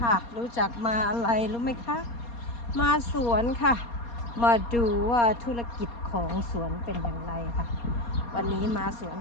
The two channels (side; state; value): right; late; 4.2 ms